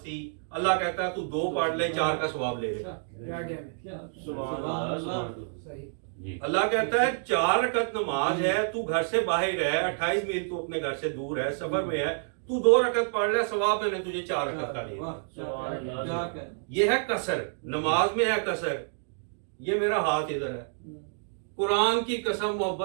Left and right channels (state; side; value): silent; left; digital silence